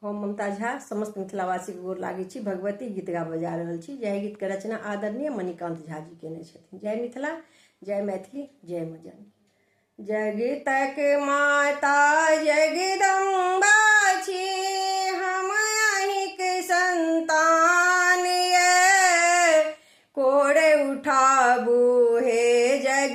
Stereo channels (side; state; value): both; identical; correlation 1.00